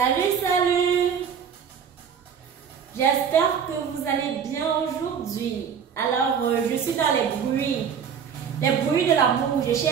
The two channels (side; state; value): left; quieter; 7.4 dB